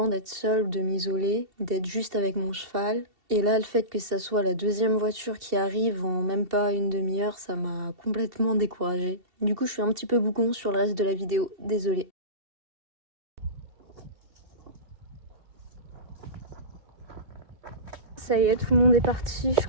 d'être seule, de m'isoler, d'être juste avec mon cheval. Et là, le fait que ça soit la deuxième voiture qui arrive en même pas une demi-heure, ça m'a complètement découragée. Du coup, je suis un petit peu bougon sur le reste de la vidéo, désolée. Ça y est, tout le monde est parti, je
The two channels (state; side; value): late; left; 2.7 ms